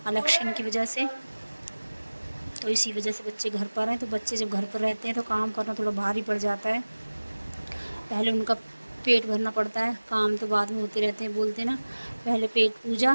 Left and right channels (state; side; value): inverted; both; correlation -1.00